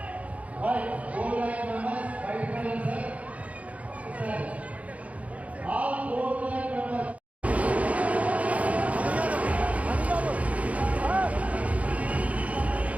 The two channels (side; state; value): left; late; 0.067 ms